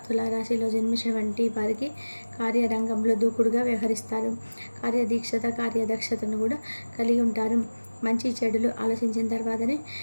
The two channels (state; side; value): inverted; both; correlation -1.00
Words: తులారాశిలో జన్మించినటువంటి వారికి కార్యరంగంలో దూకుడుగా వ్యవహరిస్తారు. కార్యదీక్షత, కార్యదక్షతను కూడా కలిగి ఉంటారు. మంచి చెడులు ఆలోచించిన తర్వాతనే